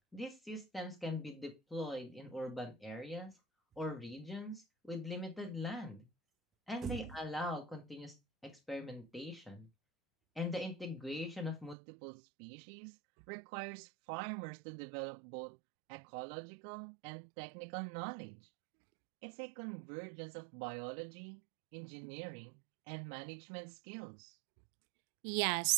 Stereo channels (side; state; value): left; drops out; at 11.8 s